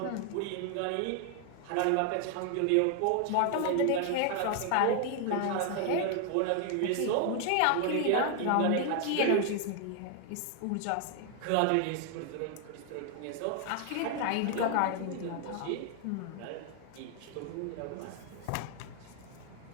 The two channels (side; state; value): both; different; correlation 0.00